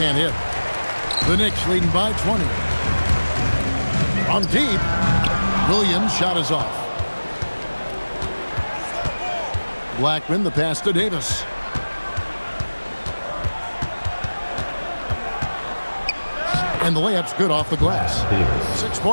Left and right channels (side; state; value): both; inverted; correlation -1.00